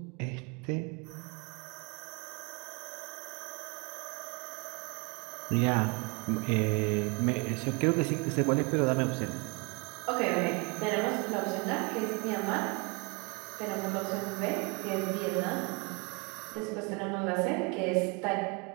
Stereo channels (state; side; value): quieter; left; 30.7 dB